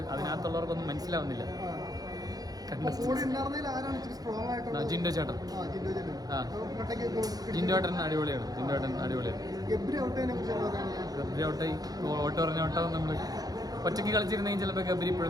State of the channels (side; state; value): left; late; 0.18 ms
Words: അതിനകത്തുള്ളവർക്കൊന്നും മനസ്സിലാവുന്നില്ല. ജിൻഡോ ചേട്ടൻ അടിപൊളിയാണ്. ഗബ്രി ഔട്ടായി. ഓട്ടോ പറഞ്ഞ ഓട്ടാവും. നമ്മള് ഒറ്റയ്ക്ക് കളിച്ചിരുന്നെങ്കിൽ ചിലപ്പോൾ ഗബ്രി